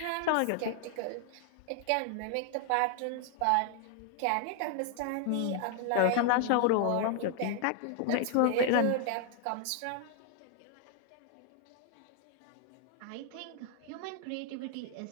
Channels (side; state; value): both; different; correlation 0.00